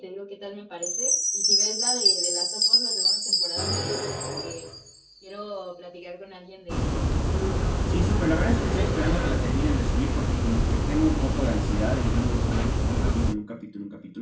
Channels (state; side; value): identical; both; correlation 1.00